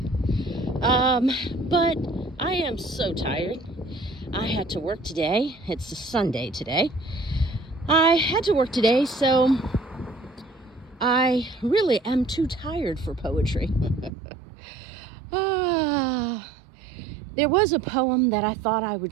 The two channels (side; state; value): left; drops out; at 14.1 s